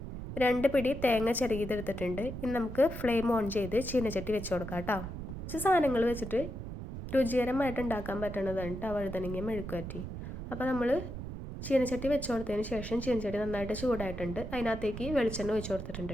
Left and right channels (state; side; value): noise; right; rumble, 8 dB below the sound